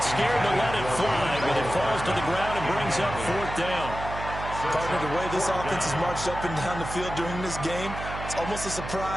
scared to let it fly, but it falls to the ground and brings up 4th down. Partner, the way this offense has marched up and down the field during this game, it's almost a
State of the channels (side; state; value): right; noise; hum, 8 dB below the sound